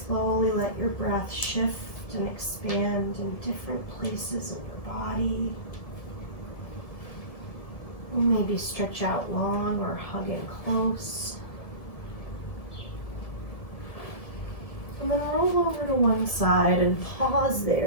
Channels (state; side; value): late; right; 1.7 ms